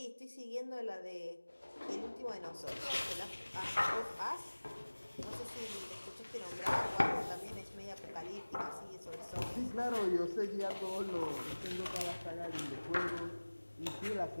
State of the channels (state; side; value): inverted; both; correlation -1.00